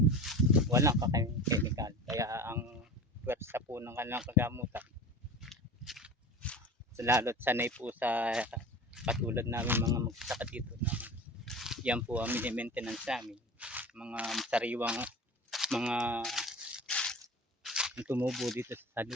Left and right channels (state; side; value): normal; both; correlation 0.34